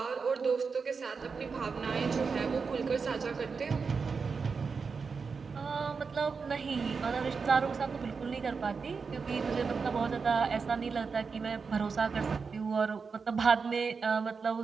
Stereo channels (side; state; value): left; quieter; 5.2 dB